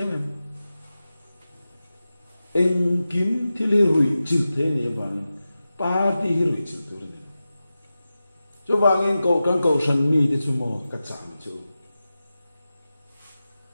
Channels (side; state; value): both; inverted; correlation -0.93